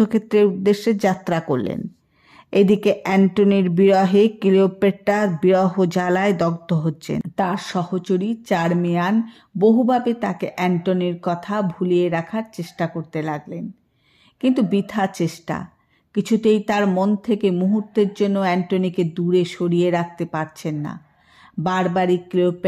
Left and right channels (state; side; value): identical; both; correlation 1.00